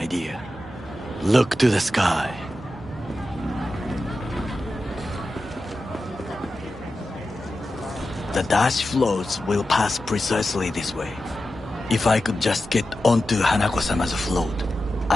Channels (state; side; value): normal; both; correlation 0.92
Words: Look to the sky. The dash floats will pass precisely this way. If I could just get onto Hanako-sama's float,